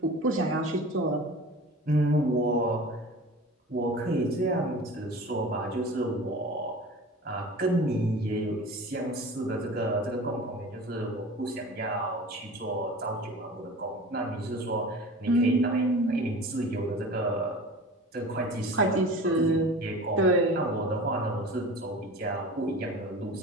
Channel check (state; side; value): normal; both; correlation 0.37